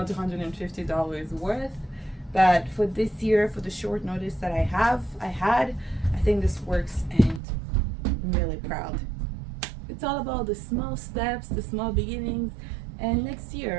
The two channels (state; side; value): drops out; left; at 7.4 s